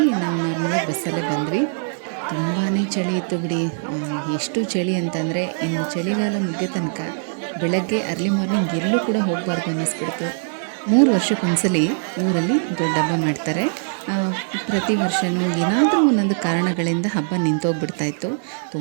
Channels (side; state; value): left; silent; digital silence